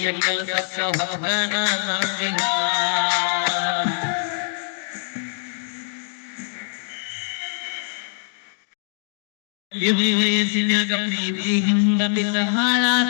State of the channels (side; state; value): right; silent; digital silence